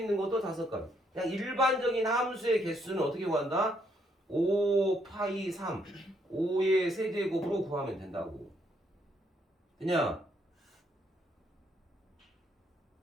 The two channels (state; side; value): normal; both; correlation 0.72